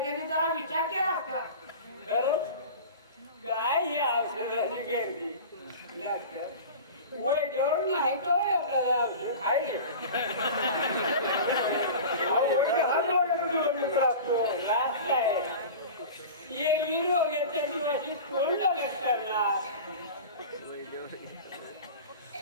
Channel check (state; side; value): inverted; both; correlation -0.34